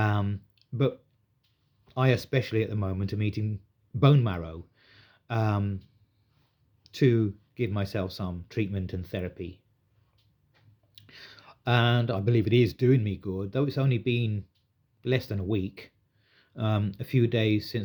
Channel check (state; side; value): identical; both; correlation 1.00